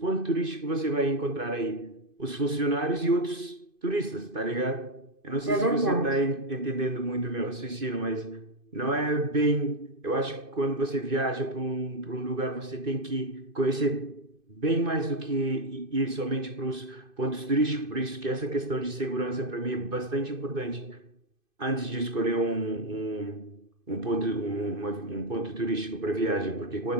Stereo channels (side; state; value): left; late; 2.5 ms